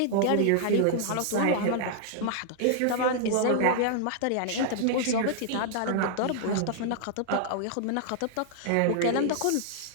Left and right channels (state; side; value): different; both; correlation -0.01